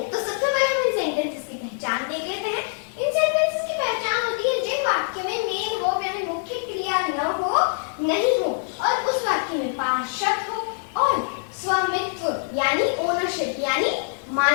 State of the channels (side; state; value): right; silent; digital silence